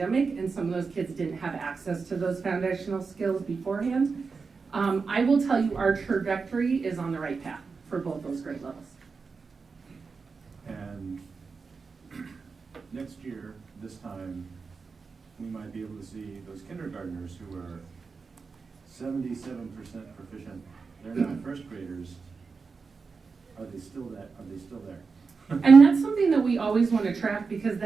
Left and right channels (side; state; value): left; quieter; 4.8 dB